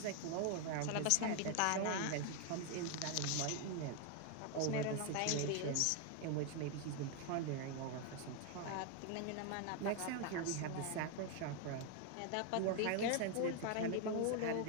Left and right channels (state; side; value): different; both; correlation 0.01